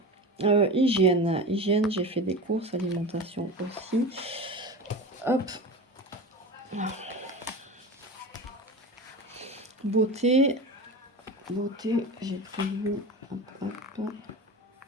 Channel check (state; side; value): normal; both; correlation 0.29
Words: Hygiène, j'ai fait des courses, alimentation aussi. Hop. Beauté, j'ai prévu, hop,